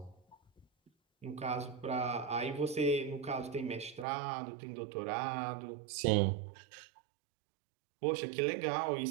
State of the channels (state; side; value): drops out; left; at 4.0 s